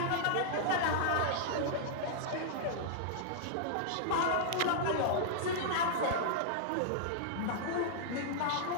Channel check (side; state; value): both; different; correlation -0.01